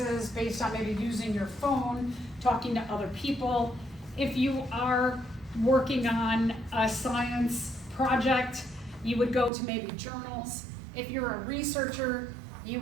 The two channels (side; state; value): left; drops out; at 9.5 s